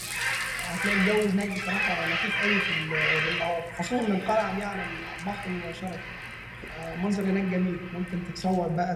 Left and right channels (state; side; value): identical; both; correlation 1.00